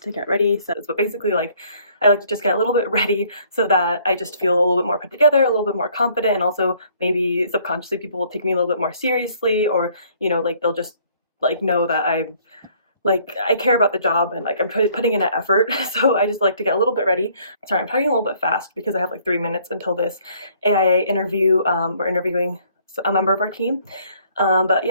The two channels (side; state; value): both; inverted; correlation -0.62